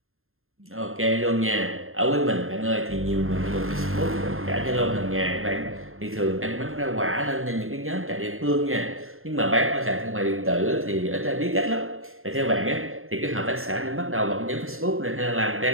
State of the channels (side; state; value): left; late; 0.61 ms